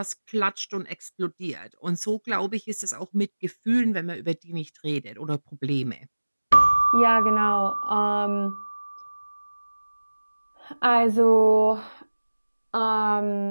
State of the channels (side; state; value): both; inverted; correlation -1.00